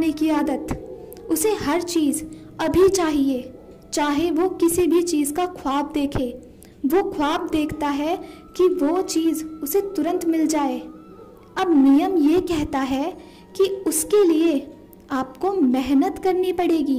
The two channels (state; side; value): identical; both; correlation 1.00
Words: की आदत। उसे हर चीज़ अभी चाहिए, चाहे वो किसी भी चीज़ का ख्वाब देखे। वो ख्वाब देखता है कि वो चीज़ उसे तुरंत मिल जाए। अब नियम ये कहता है कि उसके लिए आपको मेहनत करनी